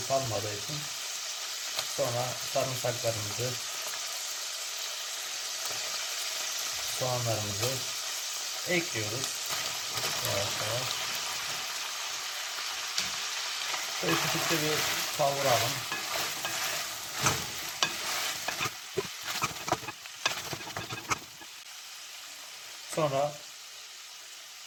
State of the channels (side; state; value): both; identical; correlation 1.00